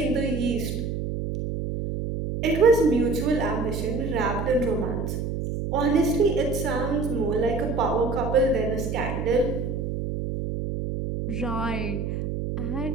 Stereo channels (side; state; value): right; noise; hum, 3 dB below the sound